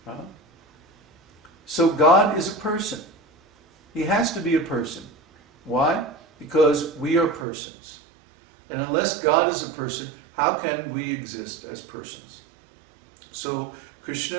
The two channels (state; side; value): drops out; left; at 7.5 s